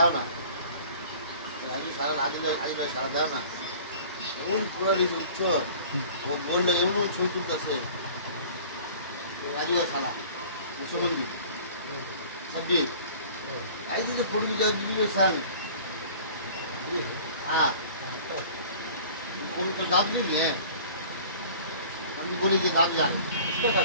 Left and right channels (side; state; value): both; inverted; correlation -0.46